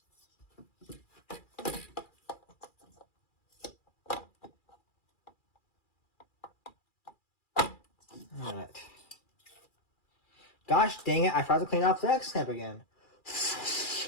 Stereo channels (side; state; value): right; late; 2.4 ms